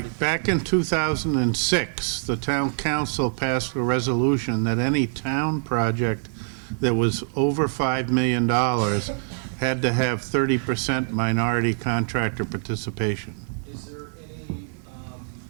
Back in 2006, the town council passed a resolution that any town project that was over $5 million had to have 30% minority contractor participation. Is there any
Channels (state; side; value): silent; left; 60 dB below the other